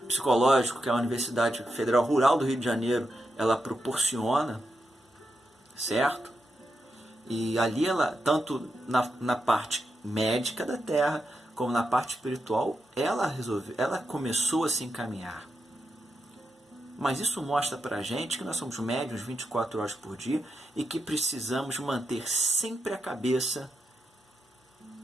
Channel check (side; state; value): both; normal; correlation 0.86